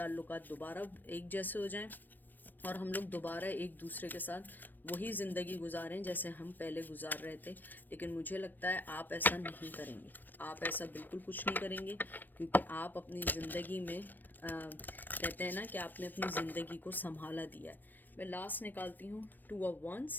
दोबारा एक जैसे हो जाएं और हम लोग दोबारा एक दूसरे के साथ वही ज़िंदगी गुजारें जैसे हम पहले गुजार रहे थे। लेकिन मुझे लगता है आप ऐसा नहीं करेंगे, आप ऐसा बिल्कुल कुछ नहीं करेंगे, क्योंकि आप अपनी ज़िंदगी में कहते हैं ना कि आपने अपनी ज़िंदगी को संभाला दिया है। मैं लास्ट निकालती हूँ, 2 of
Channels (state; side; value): late; right; 0.091 ms